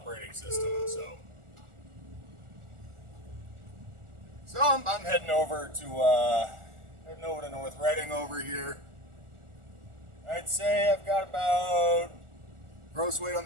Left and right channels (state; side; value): late; left; 1.4 ms